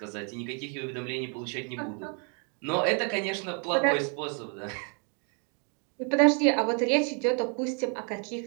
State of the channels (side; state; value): left; quieter; 38.3 dB